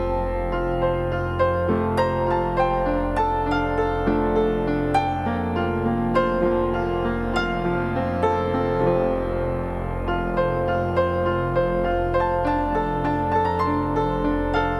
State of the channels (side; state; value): both; identical; correlation 1.00